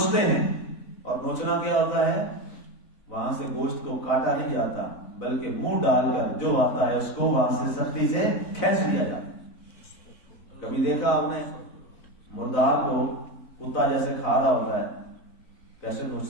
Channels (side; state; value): right; late; 4.0 ms